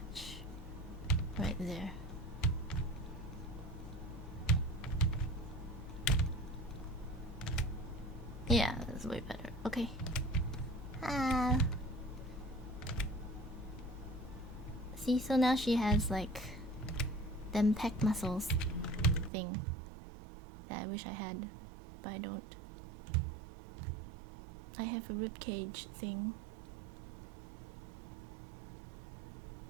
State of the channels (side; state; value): left; drops out; at 19.3 s